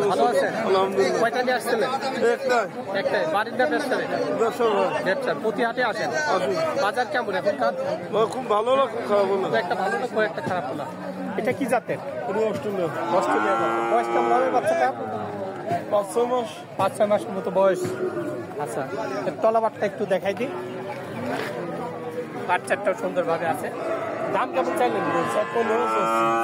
ভালো আছেন? আলহামদুলিল্লাহ। কয়টা নিয়ে আসছিলেন? একটাই। বাড়ির না ব্যবসা? ব্যবসা। প্রতি হাটে আসেন? বাজার কেমন এখনকার? খুব ভালো না, খুব খারাপ না। একটা ভালো না, একটা খারাপ না। এটা কি জাতের? অস্ট্রেলিয়া অস্ট্রেলিয়া জাতের। বয়স কেমন হবে বাচ্চাটা? 5-6 মাস। 5-6 মাসের মতো বয়স। আচ্ছা, এর তলাবারটা একটু দেখাই দিই। বাচ্চাটাও সুন্দরভাবে আছে। দাম কেমন চাইলেন?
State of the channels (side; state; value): both; identical; correlation 1.00